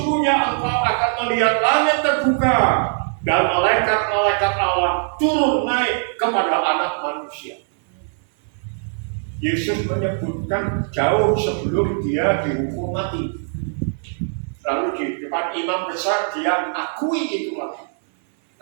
engkau akan melihat langit terbuka dan malaikat-malaikat Allah turun naik kepada anak manusia. Yesus menyebutkan jauh sebelum dia dihukum mati. Lalu di depan imam besar dia akui itu lagi.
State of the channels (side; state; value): left; silent; 60 dB below the other